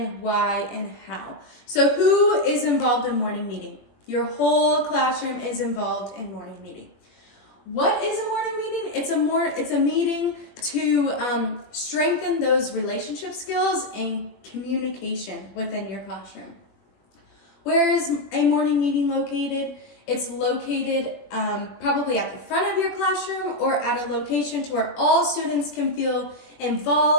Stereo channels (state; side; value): late; right; 21 ms